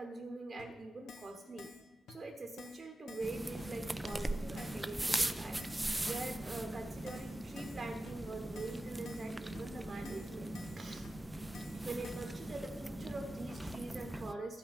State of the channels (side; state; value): both; normal; correlation 0.94